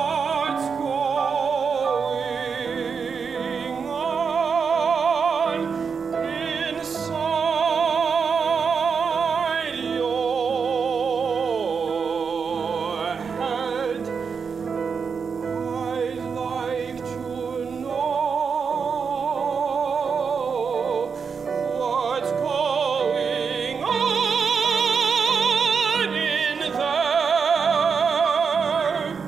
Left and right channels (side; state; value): left; quieter; 5.8 dB